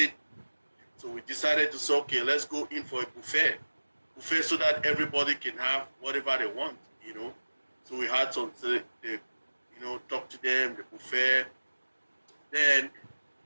So we decided to say, okay, let's go in for a buffet so that everybody can have whatever they want. So we had some, talk to them, the buffet. Then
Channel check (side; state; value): both; inverted; correlation -1.00